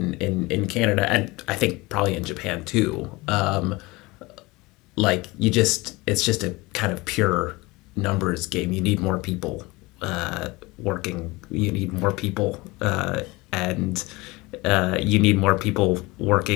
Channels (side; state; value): right; quieter; 22.8 dB